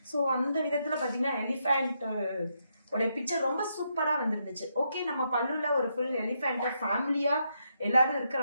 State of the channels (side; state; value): both; inverted; correlation -0.79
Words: ஸோ அந்த விதத்துல பாத்தீங்கன்னா எலிஃபண்ட் உடைய பிக்சர் ரொம்ப சூப்பரா வந்துருந்துச்சு. ஓகே, நம்ம பல்லுல ஒரு ஃபுல் எலிஃபண்ட் ஃபேமிலியா எல்லாரும் இருக்கிற